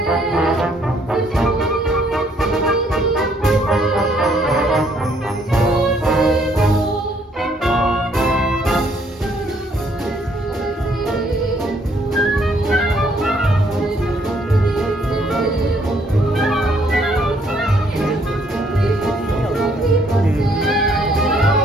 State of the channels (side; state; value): both; normal; correlation 0.67